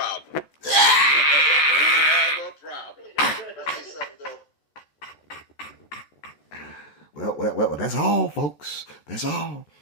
You have a problem. Well, that's all, folks. That's all.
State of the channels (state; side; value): late; right; 14 ms